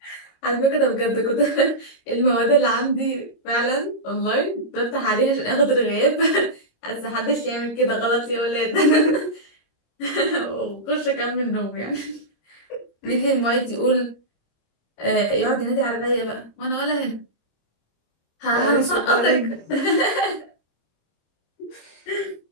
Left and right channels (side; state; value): right; late; 26 ms